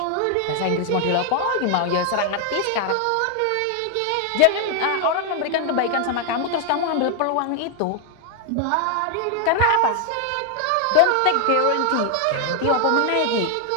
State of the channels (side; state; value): both; different; correlation 0.00